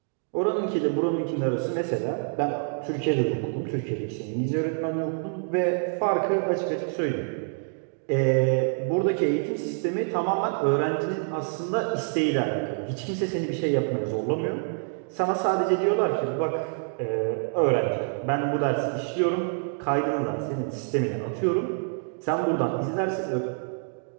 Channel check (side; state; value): left; silent; digital silence